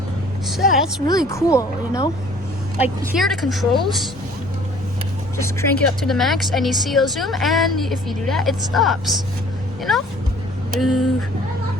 So that's really cool, you know. Like here are the controls. Just crank it up to the max, and you see a zoom. And if you do that, it stops. You know.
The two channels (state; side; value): normal; both; correlation 0.53